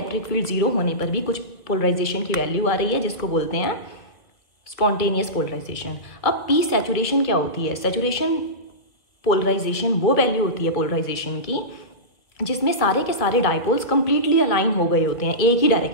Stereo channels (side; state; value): right; late; 1.9 ms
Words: फील्ड 0 होने पर भी कुछ पोलराइजेशन की वैल्यू आ रही है, जिसको बोलते हैं स्पॉन्टेनियस पोलराइजेशन। अब पी सैचुरेशन क्या होती है? सैचुरेशन पोलराइजेशन वो वैल्यू होती है पोलराइजेशन की जिसमें सारे के सारे डायपोल्स कंप्लीटली अलाइन हो गए होते हैं एक ही